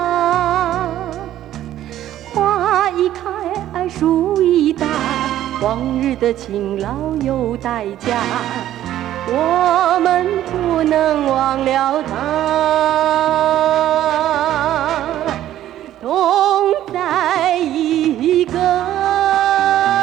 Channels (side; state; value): left; quieter; 12.6 dB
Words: 花一开，树一大，往日的勤劳有代价，我们不能忘了他。同在一个